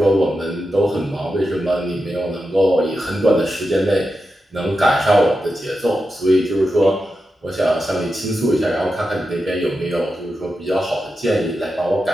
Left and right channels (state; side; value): normal; both; correlation 0.89